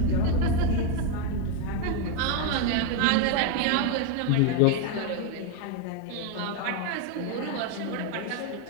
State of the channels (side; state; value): both; different; correlation 0.01